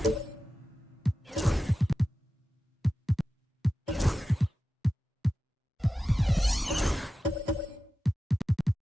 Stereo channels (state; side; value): normal; both; correlation 0.93